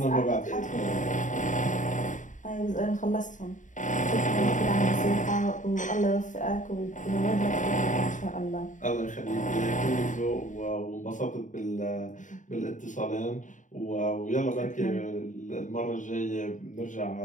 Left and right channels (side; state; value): right; late; 0.37 ms